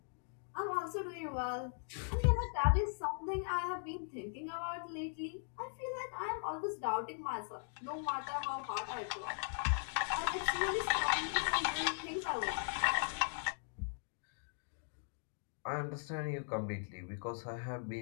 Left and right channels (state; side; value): silent; right; digital silence